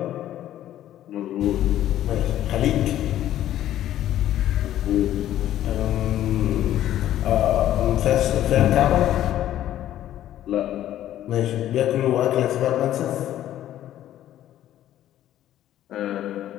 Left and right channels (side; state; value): right; quieter; 12.4 dB